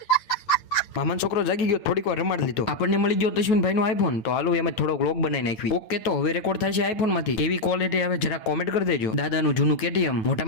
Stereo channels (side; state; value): right; late; 8.9 ms